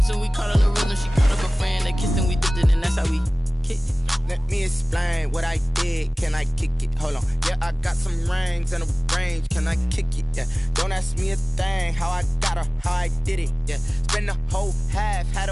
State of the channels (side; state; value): both; normal; correlation 0.98